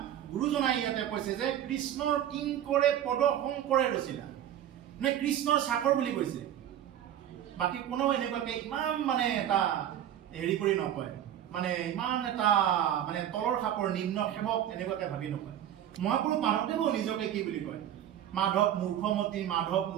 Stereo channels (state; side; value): quieter; left; 10.9 dB